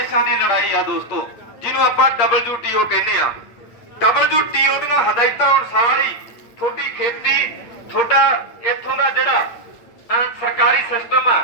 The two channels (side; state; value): right; late; 8.6 ms